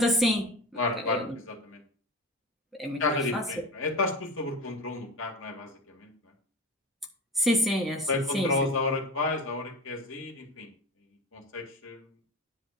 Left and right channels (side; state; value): both; normal; correlation 0.30